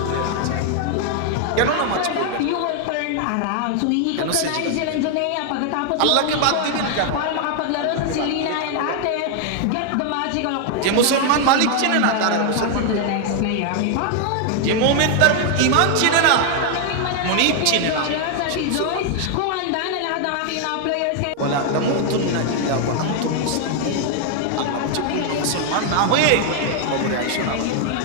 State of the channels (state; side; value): different; both; correlation 0.00